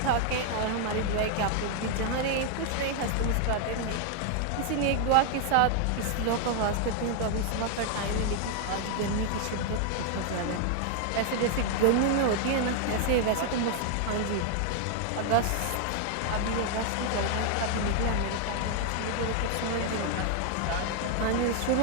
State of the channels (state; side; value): different; both; correlation 0.00